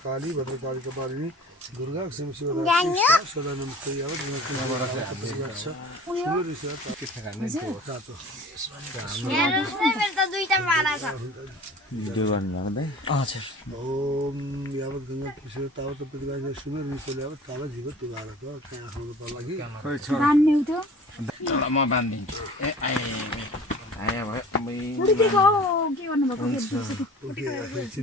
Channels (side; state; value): both; normal; correlation 0.44